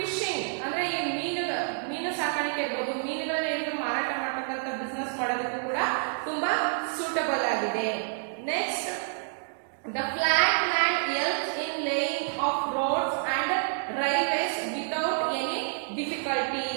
ಅಂದ್ರೆ ಈ ಮೀನು ಸಾಕಾಣಿಕೆ ಇರ್ಬೋದು, ಮೀನುಗಳನ್ನ ಹಿಡಿದು ಮಾರಾಟ ಮಾಡ್ತಕ್ಕಂಥ ಬಿಸ್ನೆಸ್ ಮಾಡೋದಕ್ಕೂ ಕೂಡ ತುಂಬಾ ಸೂಟಬಲ್ ಆಗಿದೆ. Next, the flat land helps in laying of roads and railways without any difficulty.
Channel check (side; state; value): left; silent; digital silence